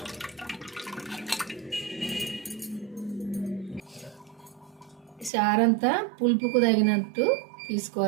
చారంతా పులుపుకు తగినట్టు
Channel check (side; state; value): left; drops out; at 5.3 s